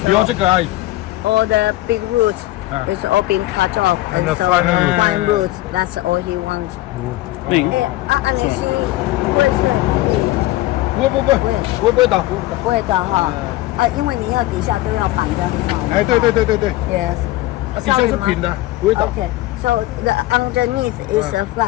留这个而已。 All the big roots is all being cut off, And the so fine roots. fine roots. That's all he wants. 安妮希会是不会倒。不会的哈因为你要底下都要绑得很好嘛。哎，对。 Yes. 底下是平的，不会倒。 Okay. So the underneath is a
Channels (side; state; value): right; quieter; 17.2 dB